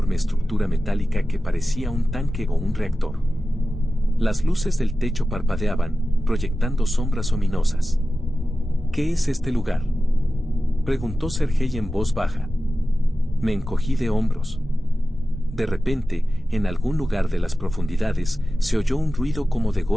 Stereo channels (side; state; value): both; normal; correlation 0.95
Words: estructura metálica que parecía un tanque o un reactor. Las luces del techo parpadeaban, proyectando sombras ominosas. ¿Qué es este lugar?, preguntó Sergei en voz baja. Me encogí de hombros. De repente, en algún lugar de las profundidades, se oyó un ruido como de